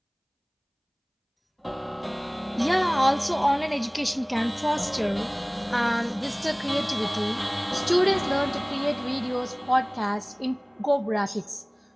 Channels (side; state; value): both; identical; correlation 1.00